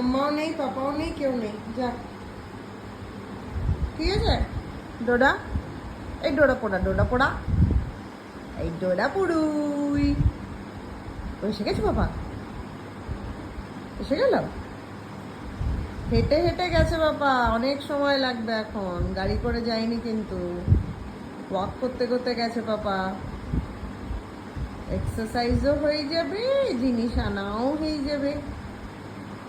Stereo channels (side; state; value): both; identical; correlation 1.00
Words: নেই, পাপাও নেই, কেউ নেই, যা। ঠিক আছে ডোডা? এই ডোডা পোড়া, ডোডা পোড়া, এই ডোডা পুড়ুই। এসে গেছে বাবা? এসে গেল? হেঁটে হেঁটে গেছে বাবা, অনেক সময় লাগবে এখন, গাড়ি করে যায়নি কিন্তু, ওয়াক করতে করতে গেছে পাপা। এক্সারসাইজও হয়ে যাবে, জিনিস আনাও হয়ে যাবে।